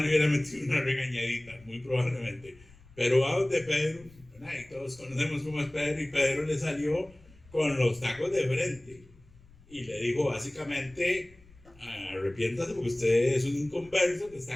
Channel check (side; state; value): left; noise; rumble, 25 dB below the sound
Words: le hubiera metido una regañadita, muy probablemente. Pero va donde Pedro, y todos conocemos cómo es Pedro, y Pedro le salió con los tacos de frente y le dijo básicamente: arrepiéntase porque usted es un inconverso que está